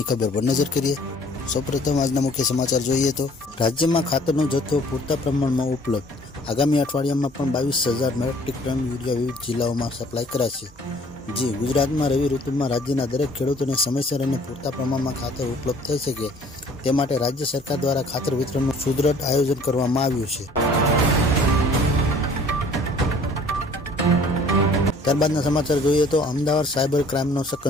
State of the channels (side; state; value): both; normal; correlation 0.54